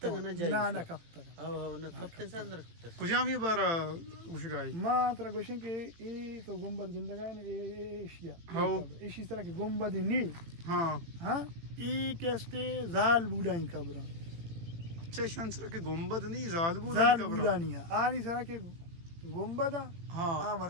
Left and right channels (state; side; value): late; left; 18 ms